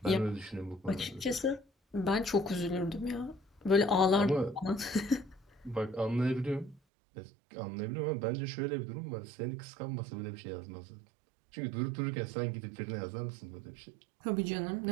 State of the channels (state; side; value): drops out; left; at 6.8 s